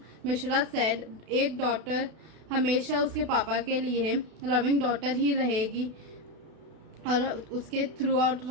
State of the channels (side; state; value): left; late; 32 ms